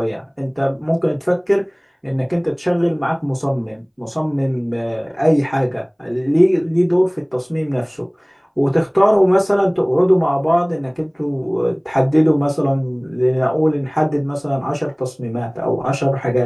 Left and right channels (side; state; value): both; identical; correlation 1.00